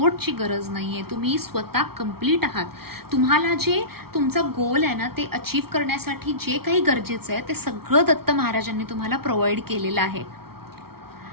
गरज नाही आहे. तुम्ही स्वतः कम्प्लीट आहात. तुम्हाला जे तुमचा गोल आहे ना ते अचीव करण्यासाठी जे काही गरजेचं आहे ते सगळं दत्त महाराजांनी तुम्हाला प्रोव्हाइड केलेलं आहे.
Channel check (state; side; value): late; left; 0.94 ms